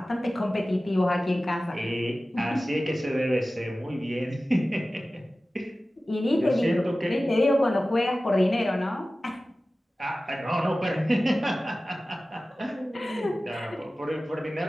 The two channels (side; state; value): both; normal; correlation 0.96